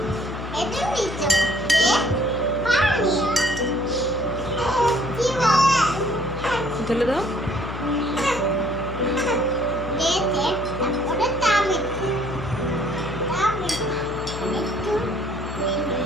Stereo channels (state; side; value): noise; left; hum, 9 dB below the sound